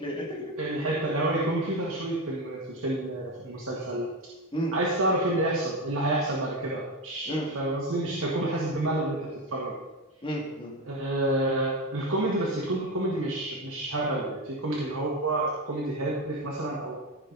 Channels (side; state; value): both; normal; correlation 0.17